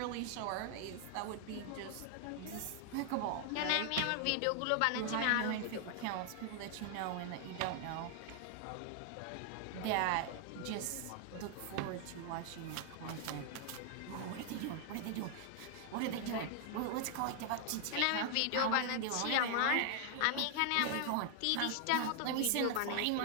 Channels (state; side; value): different; both; correlation 0.00